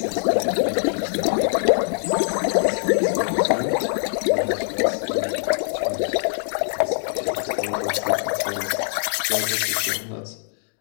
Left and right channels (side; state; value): right; silent; digital silence